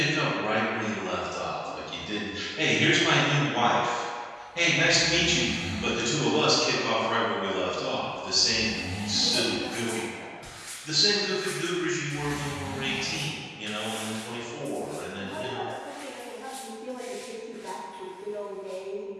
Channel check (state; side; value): identical; both; correlation 1.00